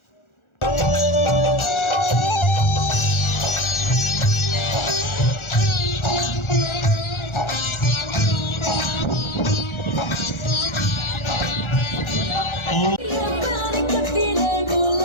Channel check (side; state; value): right; late; 1.4 ms